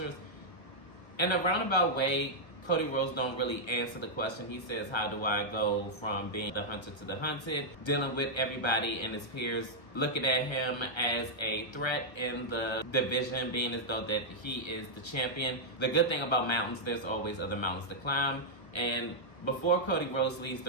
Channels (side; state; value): right; late; 1.3 ms